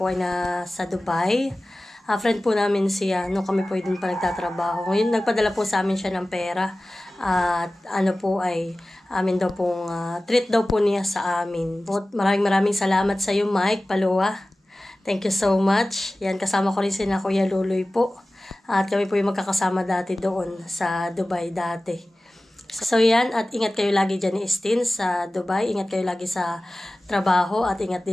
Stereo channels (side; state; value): both; normal; correlation 0.97